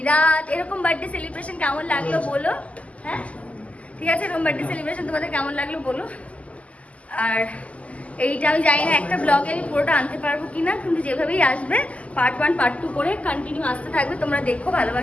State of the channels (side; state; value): right; late; 0.068 ms